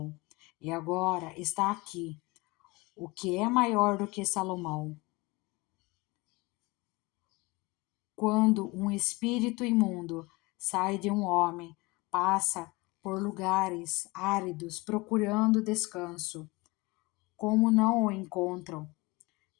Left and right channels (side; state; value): right; quieter; 24.0 dB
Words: e agora está aqui o que é maior do que Salomão. Quando um espírito imundo sai de um homem, passa por lugares áridos procurando descanso. Como não o encontram,